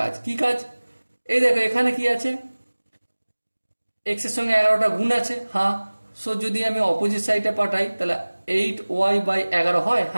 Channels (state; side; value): inverted; both; correlation -1.00